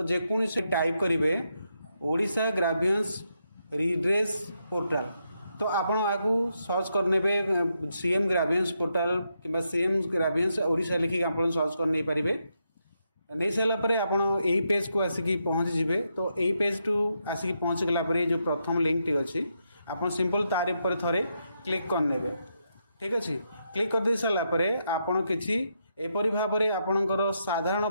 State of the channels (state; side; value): inverted; both; correlation -0.81